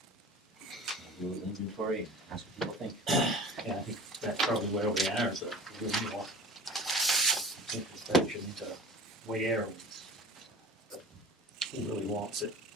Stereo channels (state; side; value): normal; both; correlation 0.40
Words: Do an inventory and ask what people think. Yeah, I think that's probably where we are, is a little more introspection into where and who really wants it.